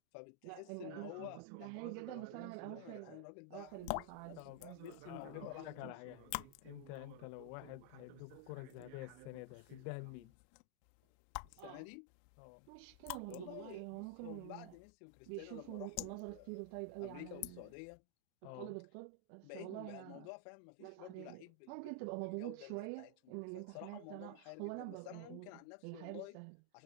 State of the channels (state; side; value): different; both; correlation 0.00